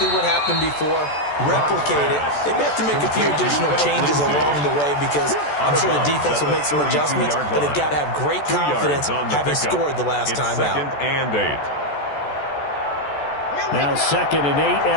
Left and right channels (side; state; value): right; late; 14 ms